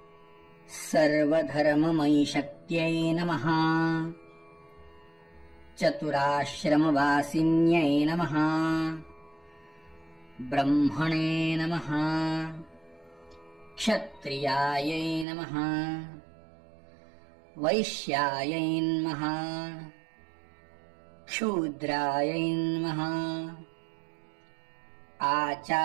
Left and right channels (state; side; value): drops out; left; at 15.2 s